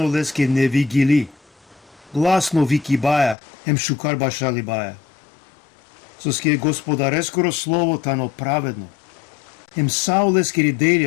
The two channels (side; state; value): right; drops out; at 3.4 s